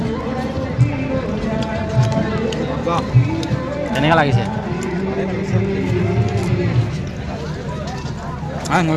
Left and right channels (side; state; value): both; identical; correlation 1.00